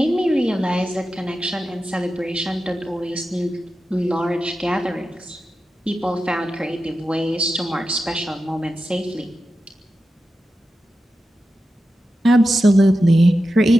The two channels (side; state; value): both; normal; correlation 0.91